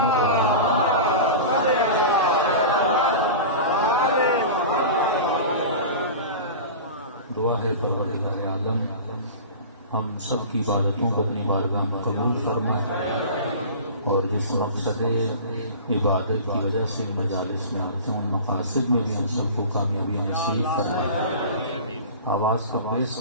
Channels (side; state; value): both; inverted; correlation -0.34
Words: دعا ہے پروردگار عالم ہم سب کی عبادتوں کو اپنی بارگاہ میں قبول فرمائے اور جس مقصد عبادت کی وجہ سے مجالس میں آتے ہیں ان مقاصد میں بھی ہم سب کو کامیابی نصیب فرمائے. آواز کا باعث